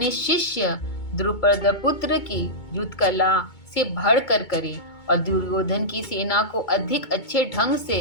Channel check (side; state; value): right; late; 2.2 ms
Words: शिष्य द्रुपदपुत्र की युद्ध कला से बढ़कर करे और दुर्योधन की सेना को अधिक अच्छे ढंग से